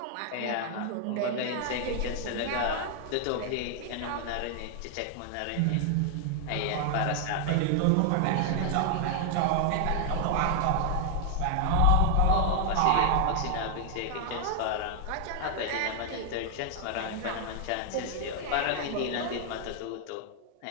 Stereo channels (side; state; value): both; different; correlation 0.00